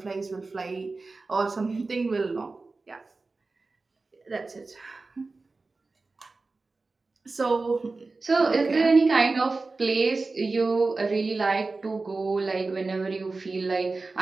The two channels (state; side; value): quieter; left; 3.7 dB